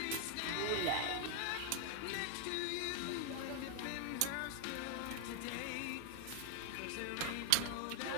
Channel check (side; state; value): both; different; correlation 0.00